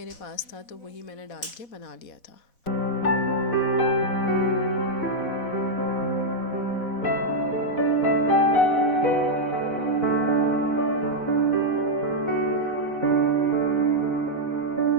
पास था तो वही मैंने डाल के बना लिया था।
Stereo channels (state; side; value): late; right; 4.1 ms